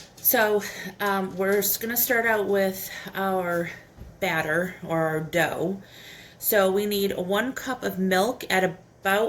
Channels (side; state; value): both; identical; correlation 1.00